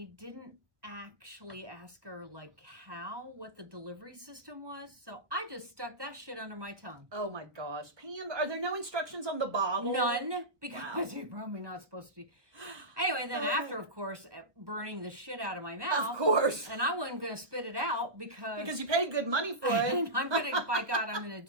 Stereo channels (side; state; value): left; late; 1.1 ms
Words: didn't actually ask her what the delivery system was, so I just stuck that shit under my tongue. Oh my gosh. Pam, are there no instructions on the bottle? None, because Wow. you're probably not supposed to. Anyway, then after, of course, burning the shit out of my mouth. Of course. And I wasn't going to spit it out because you paid good money for it. and I'm going to, by God, I'm going